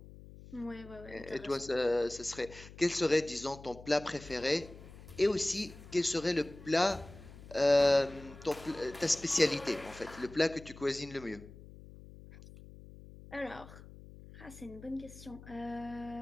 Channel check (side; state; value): left; noise; hum, 17 dB below the sound